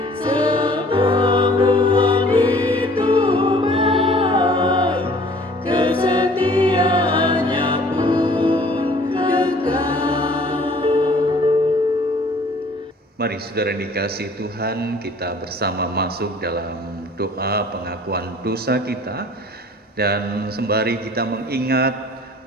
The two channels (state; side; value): normal; both; correlation 0.53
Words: sebab Tuhan itu baik, kesetiaannya pun kekal. Mari saudara yang dikasihi Tuhan, kita bersama masuk dalam doa pengakuan dosa kita, dan sembari kita mengingat